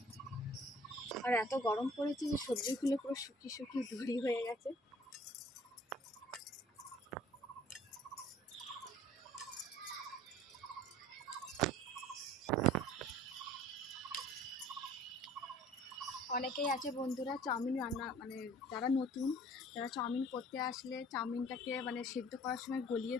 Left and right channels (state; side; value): normal; both; correlation 0.51